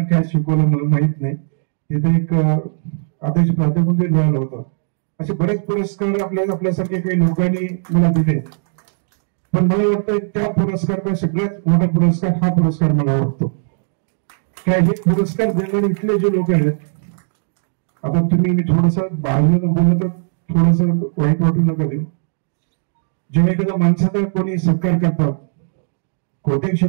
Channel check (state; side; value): silent; left; digital silence